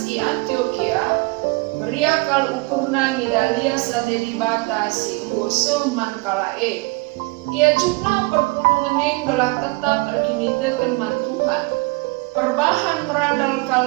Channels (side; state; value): left; quieter; 26.0 dB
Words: i Antioquia meriakal ukurna ngidalia sate dibata singgo seman kalae. Ia jukna perpulungan gelah tetap erkinitekan man Tuhan. Perbahan merandal